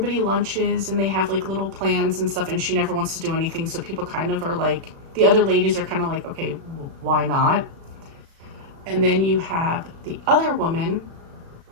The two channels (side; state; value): left; late; 36 ms